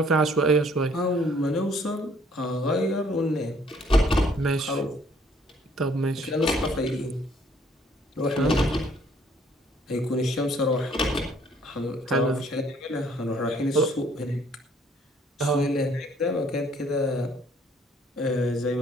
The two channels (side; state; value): both; normal; correlation 0.62